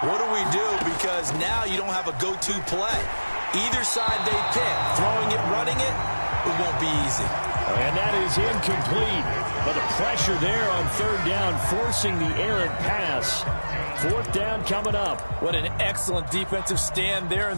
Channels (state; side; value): inverted; both; correlation -1.00